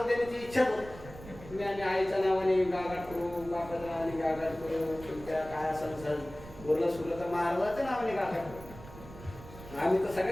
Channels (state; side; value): noise; right; rumble, 16 dB below the sound